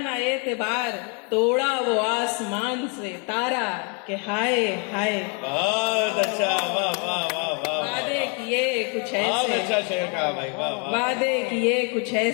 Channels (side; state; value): right; quieter; 36.4 dB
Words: एतबार, तोड़ा वो आसमान से तारा के हाय हाय। बहुत अच्छा, वाह वाह वाह वाह। वादे किए कुछ बहुत ऐसे, अच्छा शेर कहा भाई, वाह वाह। वादे किए कुछ